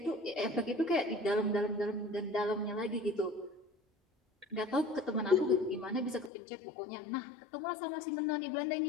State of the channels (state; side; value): drops out; right; at 6.3 s